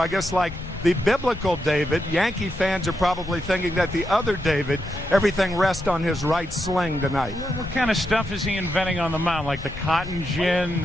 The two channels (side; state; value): left; noise; rumble, 14 dB below the sound